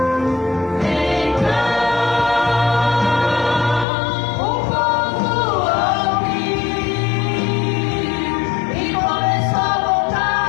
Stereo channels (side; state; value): right; drops out; at 3.9 s